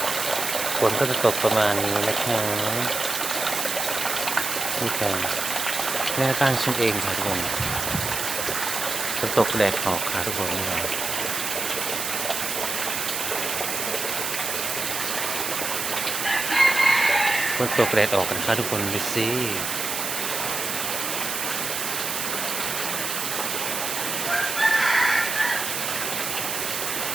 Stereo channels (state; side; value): noise; right; hiss, 3 dB below the sound